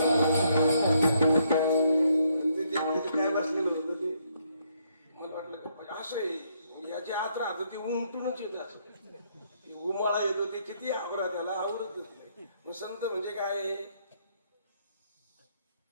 काय बसलेलं होतं ते. मला वाटलं असं आहे, याची आत राहत ते उमटूनच येत असं, उमाळा येतो ते किती आवरा त्याला आवडत नाही. मग संत म्हणजे काय?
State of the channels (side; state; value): both; inverted; correlation -0.72